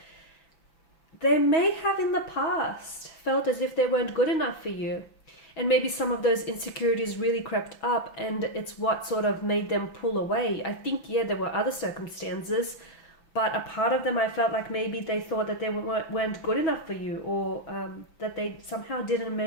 They may have in the past felt as if they weren't good enough for you. And maybe some of those insecurities really crept up and it's what sort of made them pull away. I think, yeah, there were other circumstances, but a part of them I felt like maybe they thought that they weren't good enough for you, or that they somehow didn't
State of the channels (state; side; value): late; right; 5.9 ms